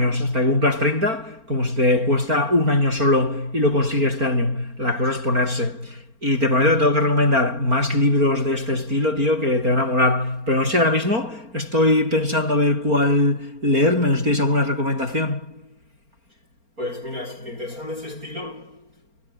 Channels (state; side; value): late; left; 4.4 ms